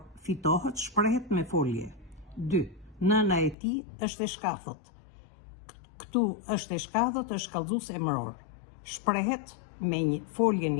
fitohet shprehet me folje. 2. Nëna e tij është e shkafët. Këtu është e shkafët, është kallëzues emëror. Shprehet me një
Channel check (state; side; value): drops out; right; at 3.6 s